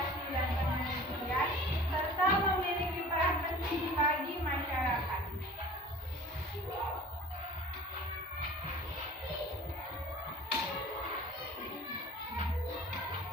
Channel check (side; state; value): both; normal; correlation 0.43